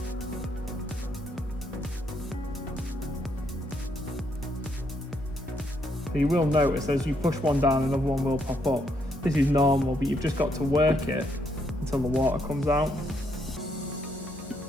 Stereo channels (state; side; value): normal; both; correlation 0.74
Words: So you will notice as you push one down, another one will pop up. This is normal, but you've just got to work it until the water comes out.